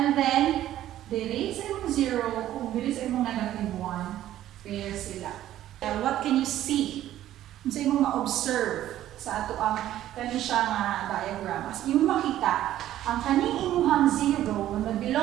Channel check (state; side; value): quieter; left; 12.9 dB